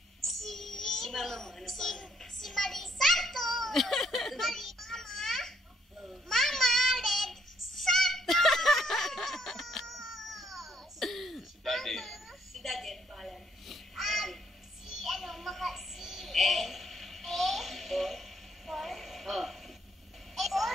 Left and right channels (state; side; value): normal; both; correlation 0.70